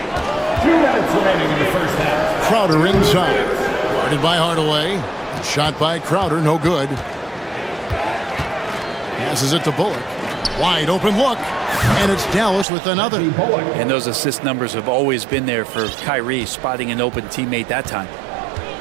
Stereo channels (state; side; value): drops out; left; at 12.7 s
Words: 2 minutes remaining in the first half. Crowder inside. Guarded by Hardaway. Shot by Crowder, no good. Passes it to Bullock. Wide open look. And it's Dallas with another. And those assist numbers have always been there for Kyrie, spotting an open teammate that time.